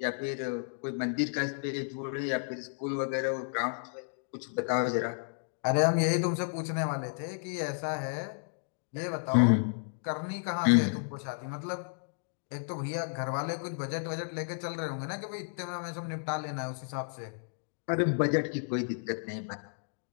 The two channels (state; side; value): silent; right; digital silence